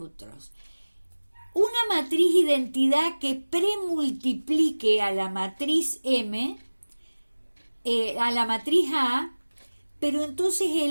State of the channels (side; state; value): both; inverted; correlation -1.00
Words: Una matriz identidad que premultiplique a la matriz M, a la matriz A, pero entonces